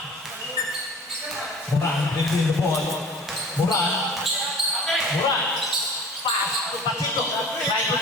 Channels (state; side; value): normal; both; correlation 0.43